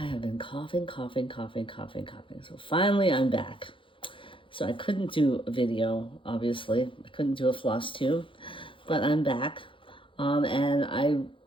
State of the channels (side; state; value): right; late; 0.25 ms